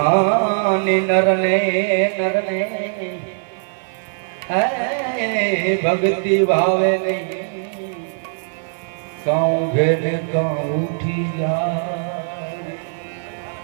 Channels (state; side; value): silent; left; 59 dB below the other